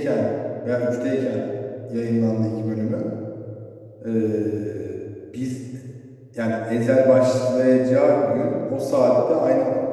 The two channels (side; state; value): both; identical; correlation 1.00